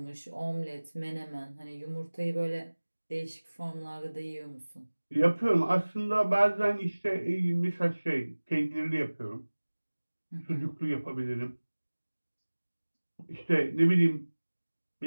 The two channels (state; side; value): inverted; both; correlation -1.00